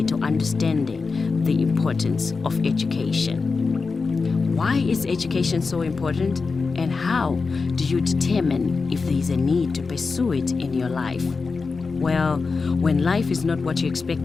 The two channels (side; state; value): right; quieter; 4.5 dB